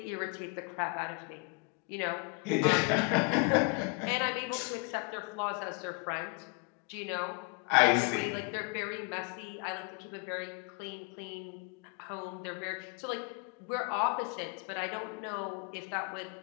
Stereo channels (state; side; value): quieter; right; 31.3 dB